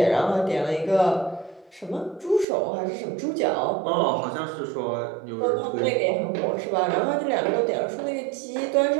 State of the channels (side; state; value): left; drops out; at 2.5 s